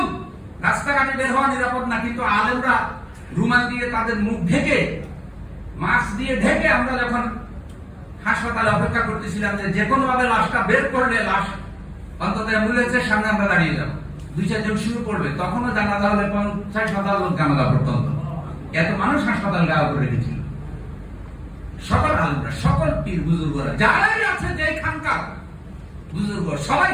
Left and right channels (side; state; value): both; identical; correlation 1.00